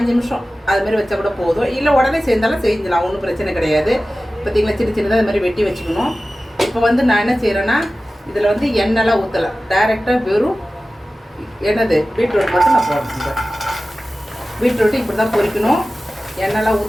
நிமிஷம் அது மாதிரி வச்சா கூட போதும். இல்லை உடனே செஞ்சாலும் செஞ்சிடலாம், ஒன்றும் பிரச்சனை கிடையாது. பார்த்தீங்களா, சின்ன சின்னதாக அது மாதிரி வெட்டி வச்சுக்கணும். இப்போ வந்து நான் என்ன செய்கிறேன்னா இதில் வந்து எண்ணெய்லாம் ஊற்றலை, டைரெக்டாக வெறும் என்னது பீட்ரூட் மட்டும் நான் போடுறேன். பீட்ரூட்டு இப்படி தான் பொரிக்கணும், எண்ணெய்லாம்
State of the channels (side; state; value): both; normal; correlation 0.96